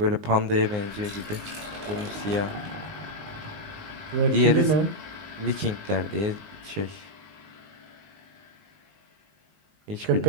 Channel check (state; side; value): late; left; 19 ms